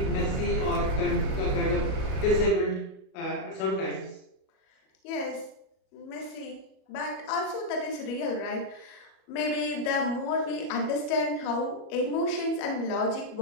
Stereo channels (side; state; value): right; late; 37 ms